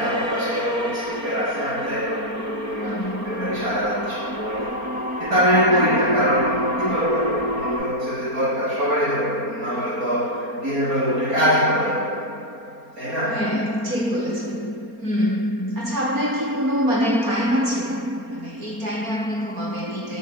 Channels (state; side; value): late; left; 4.3 ms